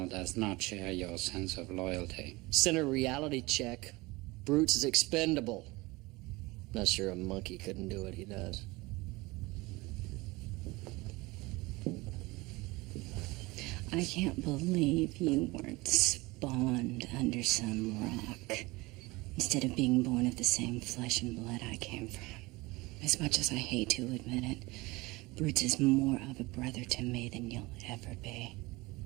does not share your sense of loyalty. Center reality check. Brutes is expendable. Not sure a monkey couldn't do what he does. I can't believe you weren't spawned under some rock instead of being born of the same flesh and blood I came from. As much as I hate to admit it, Brutes is more of a brother to me than you'll ever be.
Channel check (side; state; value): left; quieter; 22.5 dB